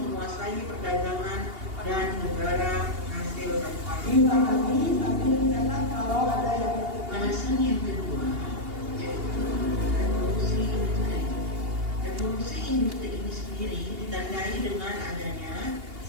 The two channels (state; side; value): late; left; 2.8 ms